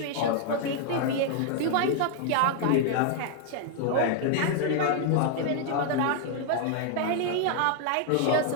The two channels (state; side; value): different; both; correlation 0.00